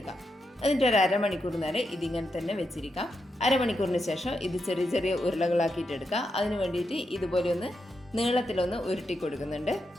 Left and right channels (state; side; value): normal; both; correlation 0.85